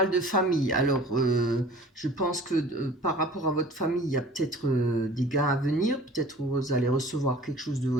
de famille. Alors, je pense que par rapport à votre famille, il y a peut-être des gains à venir. Peut-être vous allez recevoir quelque chose de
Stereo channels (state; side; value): normal; both; correlation 0.46